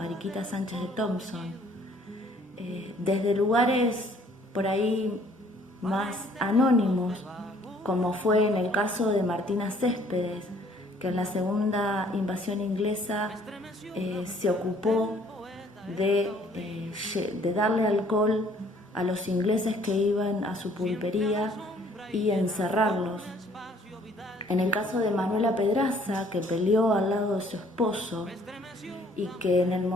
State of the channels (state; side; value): normal; both; correlation 0.59